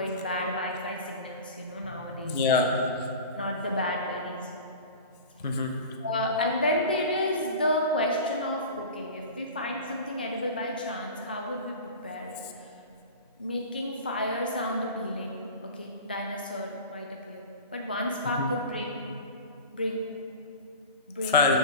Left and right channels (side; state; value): both; inverted; correlation -0.33